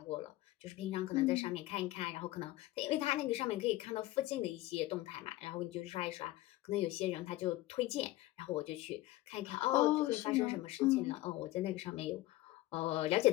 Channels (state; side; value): quieter; right; 16.9 dB